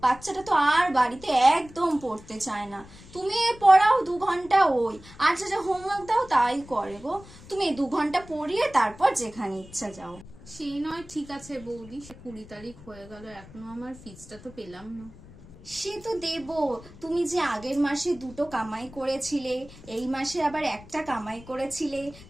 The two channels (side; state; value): left; noise; rumble, 20 dB below the sound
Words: বাচ্চাটা তো আর বাড়িতে একদম পড়তে চায় না। তুমি পড়াও 2 ঘন্টা, ওই আর যা হোমওয়ার্ক দাও তাই করে গো। তুমি 2 ঘন্টা পড়িয়ে তারপর যেখানে ইচ্ছা যাও। সেই নয়, ঠিক আছে বৌদি, সে 20 তারিখ হয়ে গেল, এখনো আমার ফিসটা তো পেলাম না। সে তো দেবো। তুমি যে আগের মাসে 2টো কামাই করেছিলে, এই মাসে আবার একটা কামাই করেছিলে,